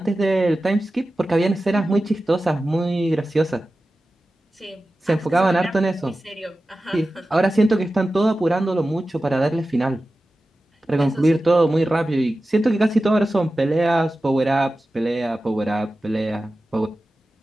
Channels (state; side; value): normal; both; correlation 0.94